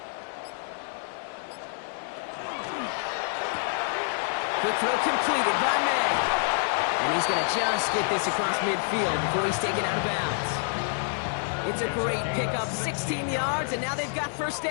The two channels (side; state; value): right; silent; 60 dB below the other